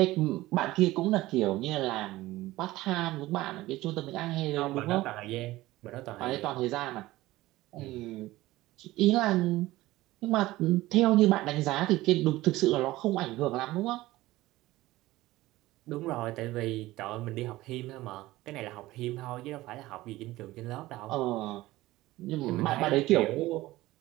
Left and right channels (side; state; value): left; quieter; 17.7 dB